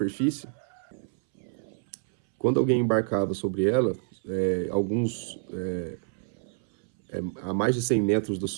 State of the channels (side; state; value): left; silent; 60 dB below the other